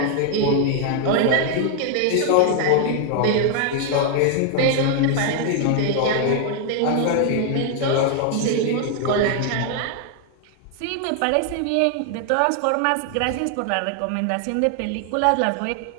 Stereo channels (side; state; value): both; different; correlation 0.00